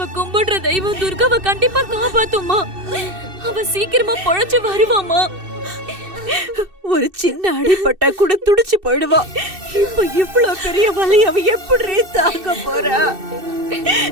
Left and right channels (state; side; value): late; left; 2.6 ms